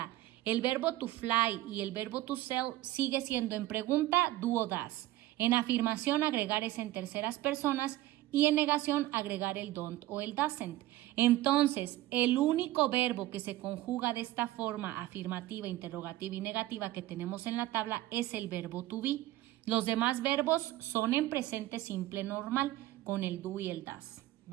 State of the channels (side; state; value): left; quieter; 15.7 dB